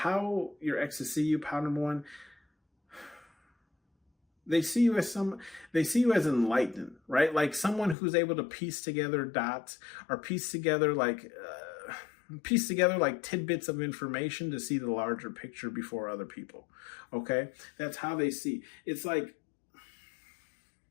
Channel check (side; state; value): right; drops out; at 8.0 s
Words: your exes see you, pound number one, they see you as enlightened, right? Like someone who's able to piece together dots, or piece together like tidbits of information to see the larger picture before other people. Okay? That's how they see. It's like